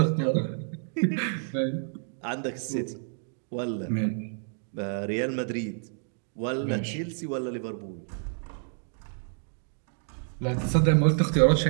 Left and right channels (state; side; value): silent; left; 59 dB below the other